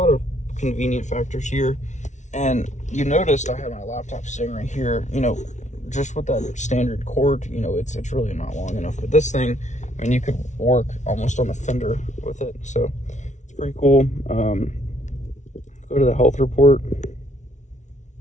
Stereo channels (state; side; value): late; right; 0.35 ms